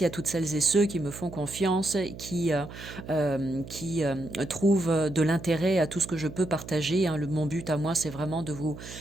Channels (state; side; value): noise; right; hum, 13 dB below the sound